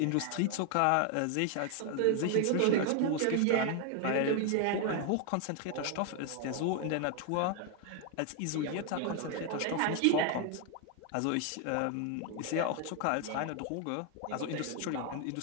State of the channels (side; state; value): both; different; correlation 0.00